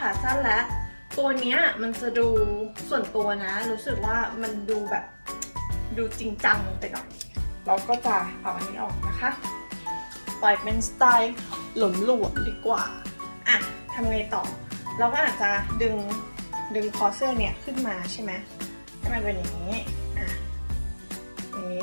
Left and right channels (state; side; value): inverted; both; correlation -1.00